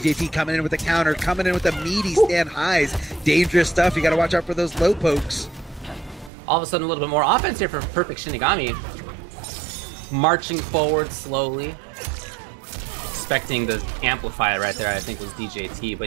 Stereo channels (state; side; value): drops out; left; at 6.3 s